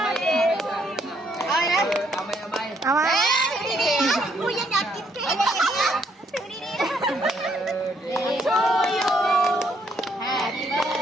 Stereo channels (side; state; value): both; normal; correlation 0.71